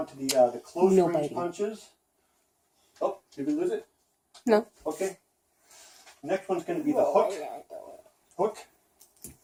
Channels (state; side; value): identical; both; correlation 1.00